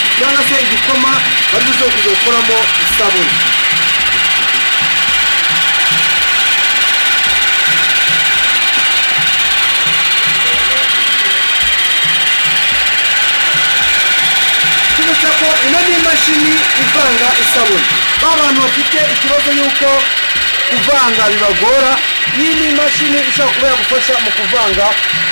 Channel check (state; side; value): inverted; both; correlation -1.00